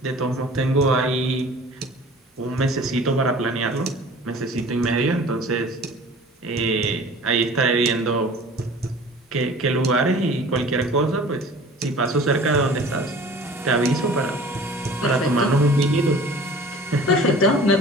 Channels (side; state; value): both; normal; correlation 0.44